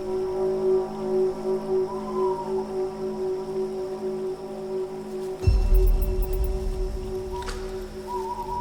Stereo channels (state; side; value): identical; both; correlation 1.00